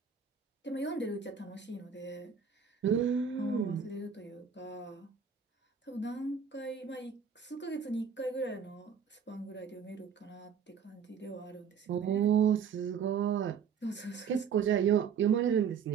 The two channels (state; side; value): quieter; left; 6.9 dB